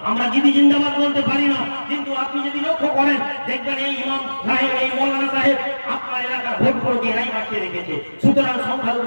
আমরা দিদি জিন্দাবাদ বলতে পারি না। কিন্তু আপনি যদি লক্ষ্য করেন দেখবেন এই ইমাম সাহেব, এই মৌলানা সাহেব আপনার এলাকার ভোট করে এরাই বাঁচিয়ে রেখেছে। সুতরাং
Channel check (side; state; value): both; inverted; correlation -1.00